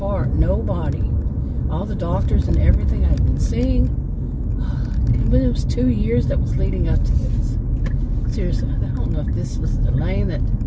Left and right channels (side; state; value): both; identical; correlation 1.00